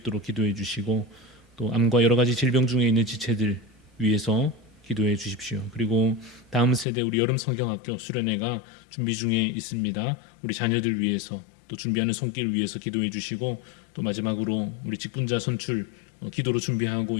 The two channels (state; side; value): drops out; right; at 6.9 s